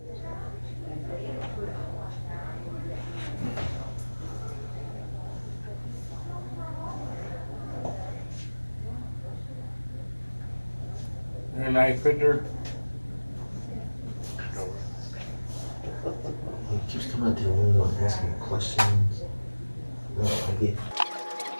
You're a knife fitter? He keeps coming out to the window and asking questions. No, I get.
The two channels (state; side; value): inverted; both; correlation -1.00